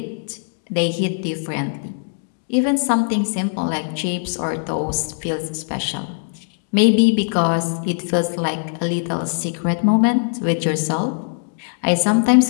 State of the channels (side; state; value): right; silent; digital silence